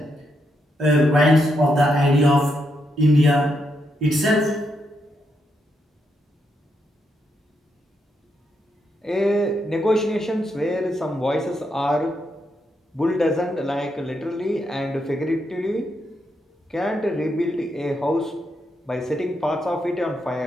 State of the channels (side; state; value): both; normal; correlation 0.80